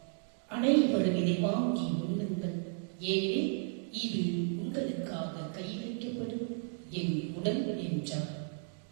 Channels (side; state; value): left; silent; 55 dB below the other